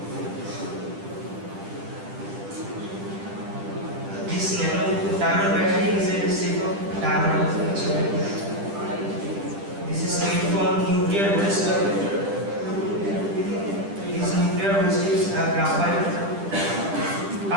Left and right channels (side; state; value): left; late; 10 ms